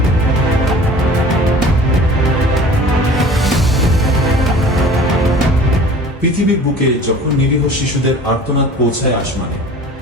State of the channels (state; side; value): normal; both; correlation 0.44